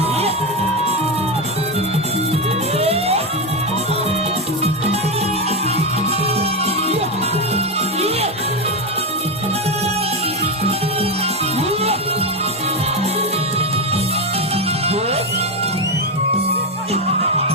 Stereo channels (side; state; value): both; normal; correlation 0.11